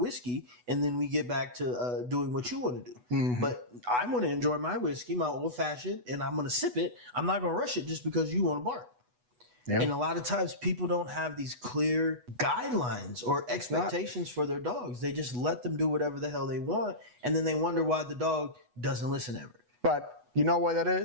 And then we get back to doing what you want to do. Mm-hmm. But I want to enjoy my whiskey, my old fashioned, and I'm going to sip it. I'm not going to rush it just because you want to bark. Yep. And a lot of times people don't have these clear guidelines or expectations for their dogs. They just let them do whatever the hell they want. And then they wonder why the dog doesn't listen ever. But you know what that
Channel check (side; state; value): left; late; 8.1 ms